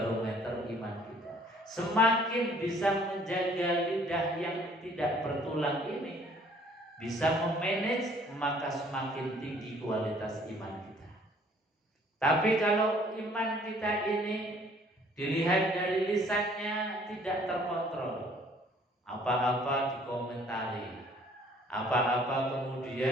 iman kita. Semakin bisa menjaga lidah yang tidak bertulang ini, bisa memanage, maka semakin tinggi kualitas iman kita. Tapi kalau iman kita ini dilihat dari lisannya tidak terkontrol, apa-apa dikomentari, apa-apa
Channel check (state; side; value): normal; both; correlation 0.58